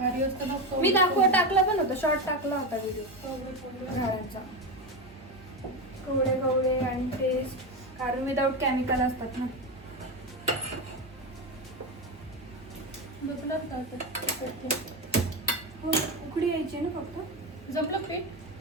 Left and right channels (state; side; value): normal; both; correlation 0.16